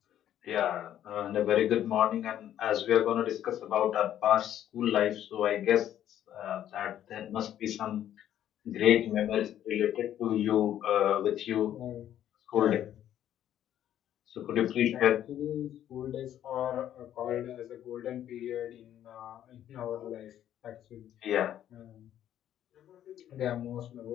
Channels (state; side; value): quieter; right; 11.2 dB